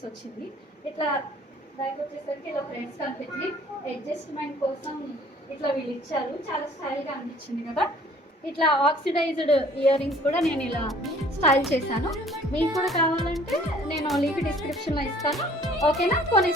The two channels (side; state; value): both; normal; correlation 0.54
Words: వచ్చింది. ఇట్లా బ్యాక్ వచ్చేసరికి ఇలా ఫ్రెండ్స్ కనిపించింది. అడ్జస్ట్మెంట్ కోసం ఇట్లా వీళ్ళు ఇచ్చారు. చాలా స్టైల్గా అనిపించింది కదా. ఇట్లా ఆక్సిడైజ్డ్ ఇయర్ రింగ్స్ కూడా నేను ఇలా స్టైల్ చేశాను. మీకు కూడా కావాలంటే నేను లింక్ డిస్క్రిప్షన్లో ఇస్తాను. ఓకేనా,